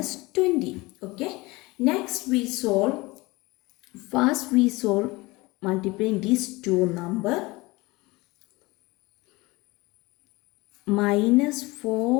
20. Okay. Next we solve. First we solve multiplying these two number. Minus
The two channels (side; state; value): right; quieter; 22.4 dB